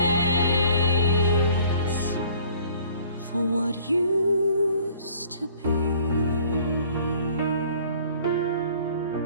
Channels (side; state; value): both; inverted; correlation -0.54